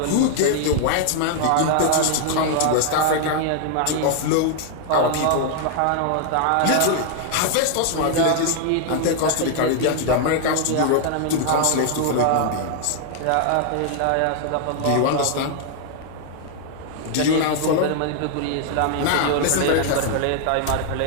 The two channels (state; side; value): different; both; correlation 0.00